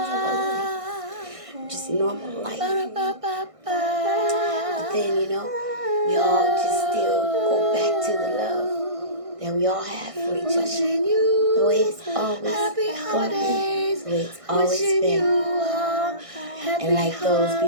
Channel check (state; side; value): late; left; 1.6 ms